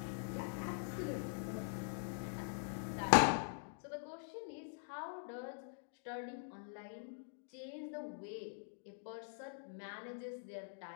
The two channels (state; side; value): silent; right; digital silence